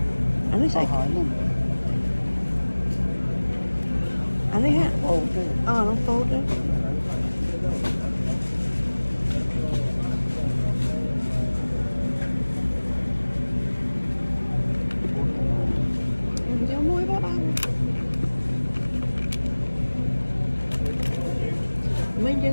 anh ấy hỏi nè anh ấy ha ok nó tốt đấy cho muối bớt ăn mình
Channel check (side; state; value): both; inverted; correlation -1.00